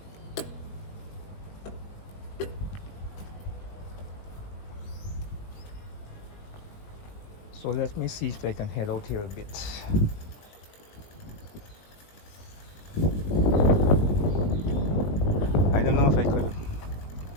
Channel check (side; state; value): right; late; 20 ms